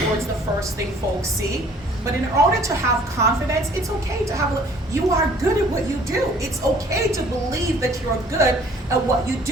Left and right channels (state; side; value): normal; both; correlation 0.55